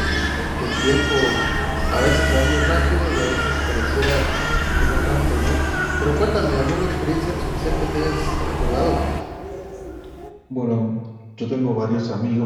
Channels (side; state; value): both; identical; correlation 1.00